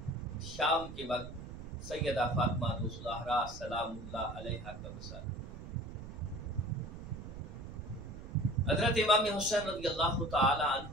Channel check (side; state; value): right; noise; rumble, 11 dB below the sound